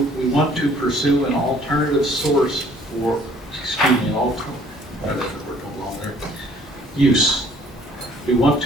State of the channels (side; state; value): both; normal; correlation 0.58